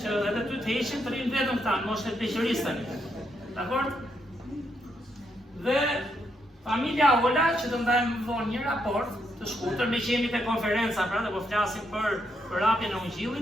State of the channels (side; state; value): both; normal; correlation 0.78